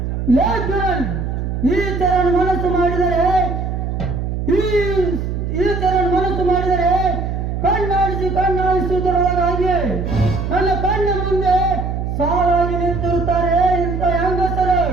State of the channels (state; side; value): noise; right; hum, 3 dB below the sound